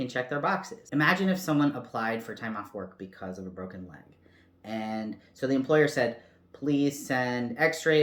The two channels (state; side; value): identical; both; correlation 1.00